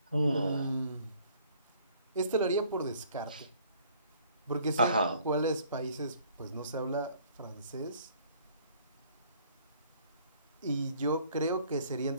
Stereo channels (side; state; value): both; inverted; correlation -0.59